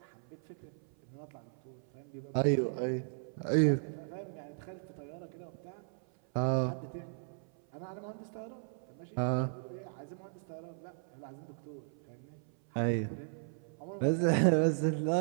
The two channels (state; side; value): silent; left; 54 dB below the other